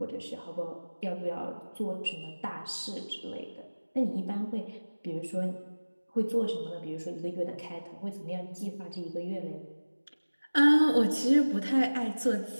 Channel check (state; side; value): inverted; both; correlation -1.00